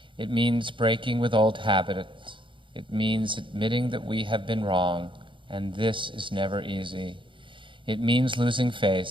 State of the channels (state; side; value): late; left; 0.24 ms